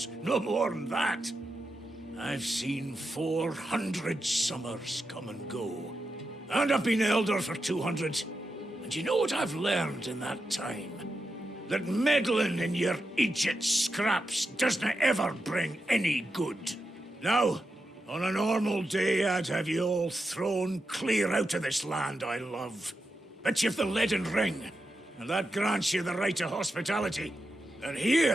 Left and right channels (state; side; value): normal; both; correlation 0.88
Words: No more than that. I've seen 400 summers come and go. And I've been elder for 200. And you know what I've learned in that time? That meddling in your idiot scraps doesn't ever bring any good. Now, on a normal day, I'd have you all thrown clear out of this land I love. But you've the leaden ring, and that grants you the right to hospitality. And